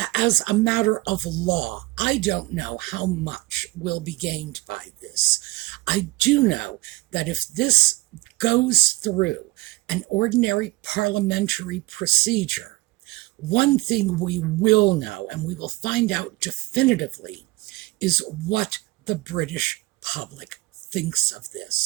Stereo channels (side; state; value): left; quieter; 20.4 dB